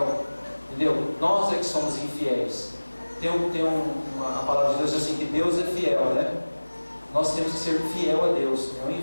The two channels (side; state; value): both; inverted; correlation -1.00